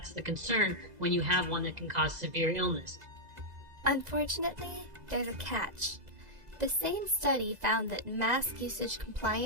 the concern when you have one that can cause severe illness. Unfortunately, there's a catch. The same study found that mask usage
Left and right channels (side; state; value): left; late; 2.0 ms